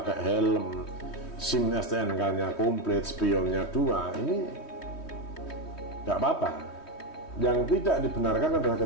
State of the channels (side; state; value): right; late; 3.2 ms